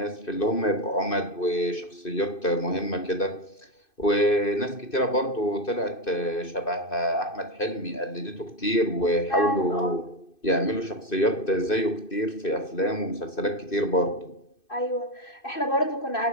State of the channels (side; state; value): right; late; 2.6 ms